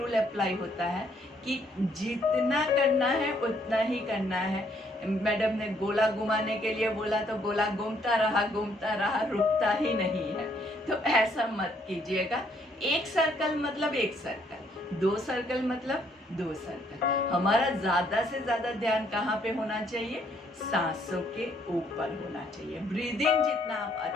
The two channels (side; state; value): both; normal; correlation 0.68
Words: अप्लाई होता है कि जितना करना है उतना ही करना है। मैडम ने गोला घुमाने के लिए बोला तो गोला घूमता रहा, रुकता ही नहीं है। तो ऐसा मत कीजिएगा। एक सर्कल मतलब एक सर्कल, दो सर्कल मतलब दो सर्कल। हमारा ज्यादा से ज्यादा ध्यान कहाँ पे होना चाहिए? सांसों के ऊपर होना चाहिए। ब्रीदिंग जितना आप